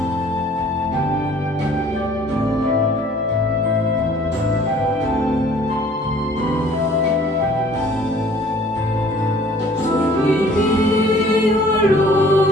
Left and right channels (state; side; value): normal; both; correlation 0.54